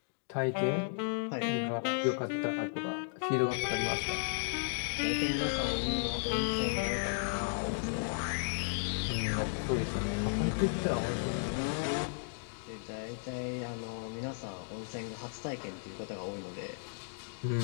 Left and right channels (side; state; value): right; silent; digital silence